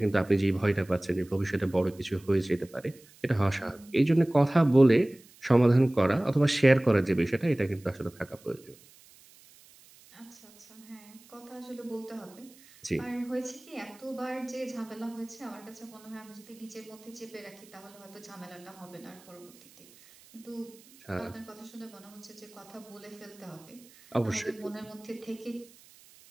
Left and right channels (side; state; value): right; noise; hiss, 25 dB below the sound